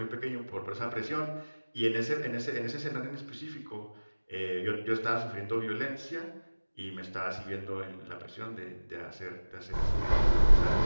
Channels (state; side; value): inverted; both; correlation -1.00